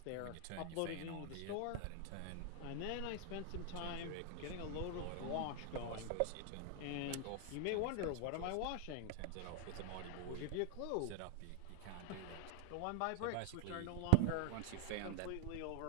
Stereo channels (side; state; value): both; different; correlation 0.00